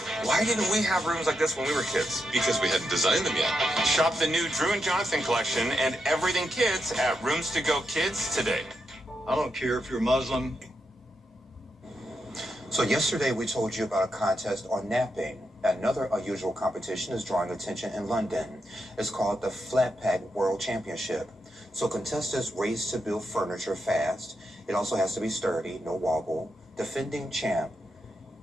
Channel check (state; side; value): normal; both; correlation 0.84